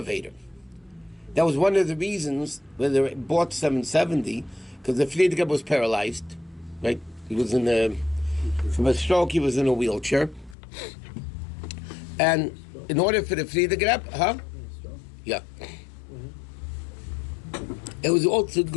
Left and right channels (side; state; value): right; drops out; at 10.6 s